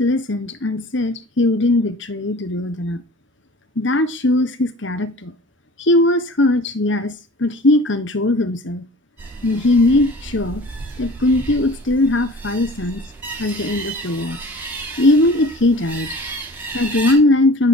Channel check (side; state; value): both; normal; correlation 0.44